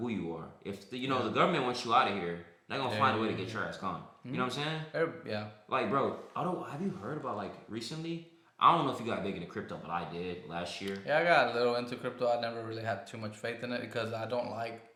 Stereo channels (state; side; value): identical; both; correlation 1.00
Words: who you are. If the government wants you out of here, they're gonna find a way to get your ass gone. You know what I'm saying? Yeah. Like, bro, have you heard about like recently? I don't know if you got big into crypto, but I did last year. Yeah, I got a little into crypto. I never really had too much faith in it because I don't like